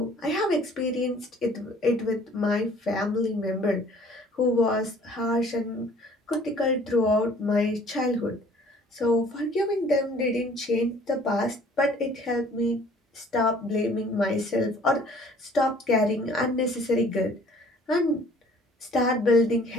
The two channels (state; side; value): normal; both; correlation 0.54